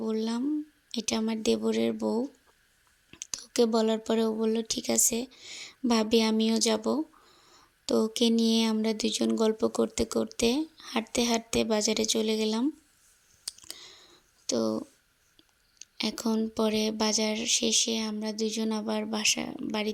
বললাম, এটা আমার দেবরের বউ। তো ওকে বলার পরে ও বলল ঠিক আছে ভাবি, আমিও যাব। তো ওকে নিয়ে আমরা দুজন গল্প করতে করতে হাঁটতে হাঁটতে বাজারে চলে গেলাম। তো এখন পরে বাজার শেষে আমরা দুজন আবার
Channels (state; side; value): identical; both; correlation 1.00